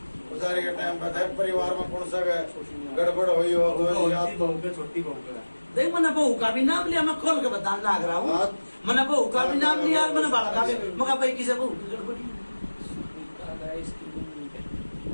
पुजारी का टाइम पर है। परिवार में कौन सा गड़बड़ हुई हो तो याद छोटी बहू के, छोटी बहू के देख मैंने बहू का भी नाम लिया, मैं खोल के बताने लग रहा हूँ। मैंने बहू का भी नाम लिया, मैंने बाला का भी, मगर भाई किसे बहू की गड़बड़ी।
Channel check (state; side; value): inverted; both; correlation -1.00